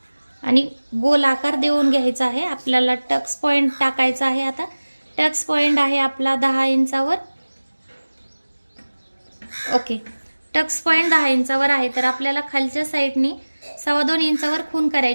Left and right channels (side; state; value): both; inverted; correlation -1.00